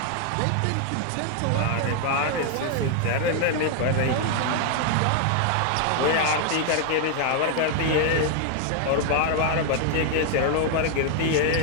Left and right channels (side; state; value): both; different; correlation 0.01